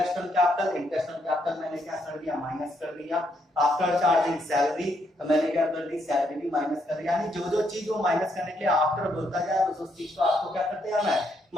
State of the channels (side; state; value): both; normal; correlation 0.75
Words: on capital, interest on capital मैंने क्या कर दिया माइनस कर दिया। आफ्टर चार्जिंग सैलरी, तो मैंने क्या कर दी सैलरी भी माइनस कर दिया। यानी जो जो चीज वो माइनस करने के लिए आफ्टर बोलता जाए उस चीज को आपको क्या करते आना है